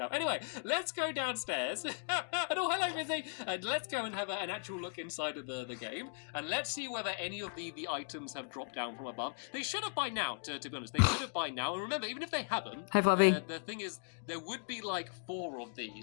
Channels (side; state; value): right; silent; digital silence